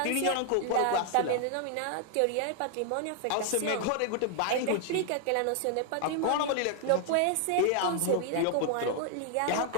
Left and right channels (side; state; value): both; different; correlation 0.00